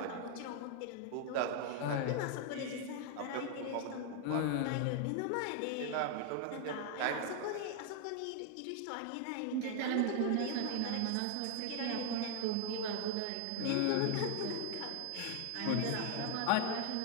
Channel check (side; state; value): both; different; correlation 0.00